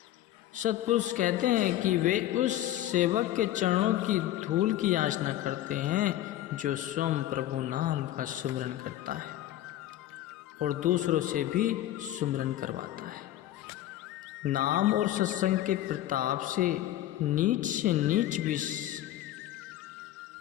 सत्पुरुष कहते हैं कि वे उस सेवक के चरणों की धूल की याचना करते हैं जो स्वयं प्रभु नाम का सुमरन करता है और दूसरों से भी सुमरन करवाता है। नाम और सत्संग के प्रताप से नीच भी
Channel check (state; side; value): quieter; right; 13.6 dB